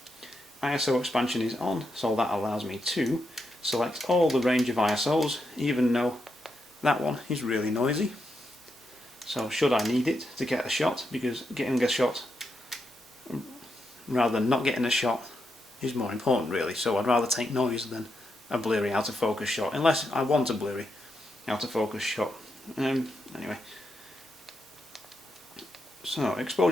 ISO expansion is on, so that allows me to select all the range of ISOs, even though that one is really noisy. So should I need it to get a shot, because getting a shot rather than not getting a shot is more important really, so I'd rather take noise than a blurry out of focus shot, unless I want a blurry out of focus shot. Anyway, so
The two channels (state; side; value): normal; both; correlation 0.84